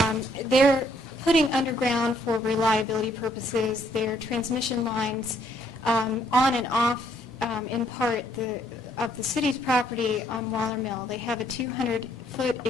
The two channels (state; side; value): normal; both; correlation 0.68